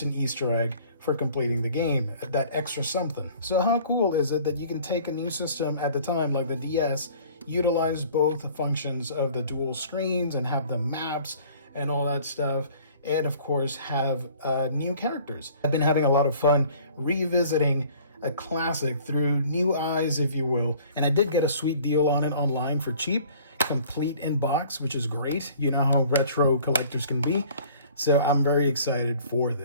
an Easter egg for completing the game, that extra something. So how cool is it that you can take a new system at the time, like the DS, utilize both functions of the dual screens and have the maps and all that stuff, and of course have new characters. I've been having a lot of fun revisiting a classic through new eyes, if you will. And I did get a sweet deal on it online for cheap, complete in box, which is great. You know how retro collectors can be. So I'm very excited for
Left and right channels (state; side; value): inverted; both; correlation -0.51